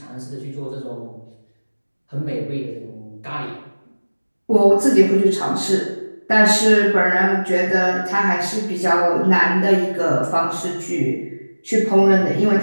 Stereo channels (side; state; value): both; inverted; correlation -1.00